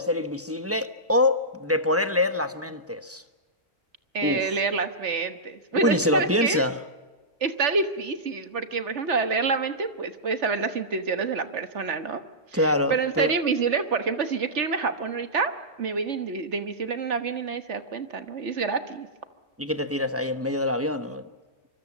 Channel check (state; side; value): normal; both; correlation -0.15